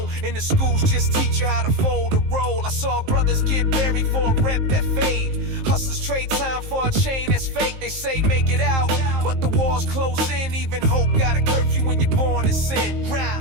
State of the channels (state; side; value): late; left; 19 ms